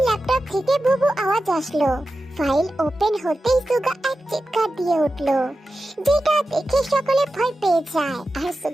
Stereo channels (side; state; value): both; normal; correlation 0.93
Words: ল্যাপটপ থেকে বুবু আওয়াজ আসলো। ফাইল ওপেন হতেই সুগা এক চিৎকার দিয়ে উঠলো, যেটা দেখে সকলে ভয় পেয়ে যায় আর